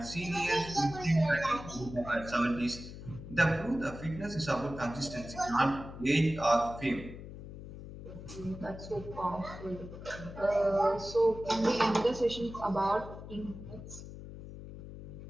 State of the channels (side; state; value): left; noise; hum, 12 dB below the sound